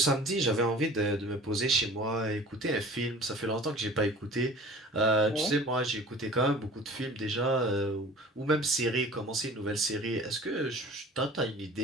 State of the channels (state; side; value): normal; both; correlation 0.44